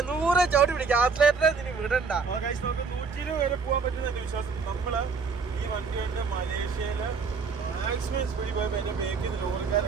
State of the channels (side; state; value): left; quieter; 5.0 dB